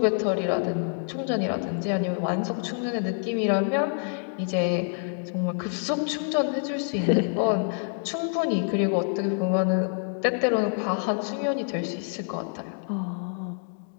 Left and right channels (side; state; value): right; silent; 60 dB below the other